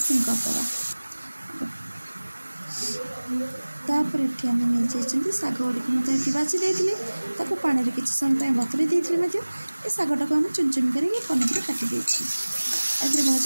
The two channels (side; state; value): both; inverted; correlation -1.00